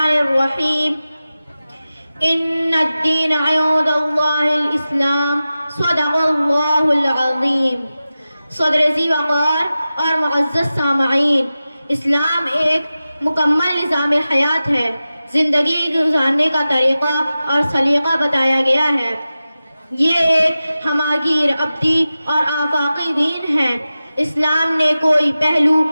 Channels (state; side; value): inverted; both; correlation -0.95